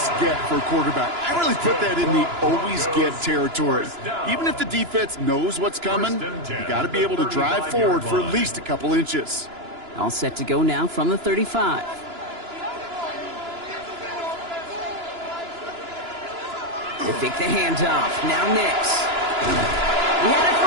for a quarterback. I really put that in the always-get territory. Even if the defense knows what's coming, you got to be able to drive forward for at least a couple inches. All set to go now from the 35. They fake the handoff. Now Nix. He had it for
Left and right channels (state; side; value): late; left; 2.9 ms